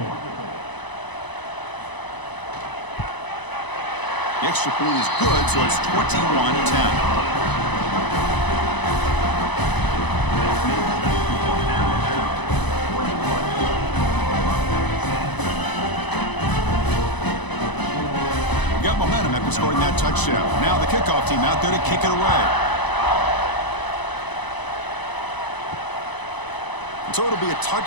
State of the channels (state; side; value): late; right; 1.0 ms